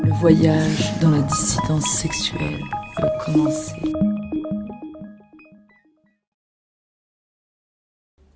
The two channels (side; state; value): both; identical; correlation 1.00